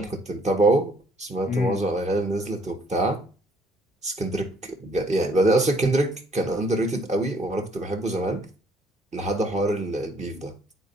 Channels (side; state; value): both; normal; correlation 0.63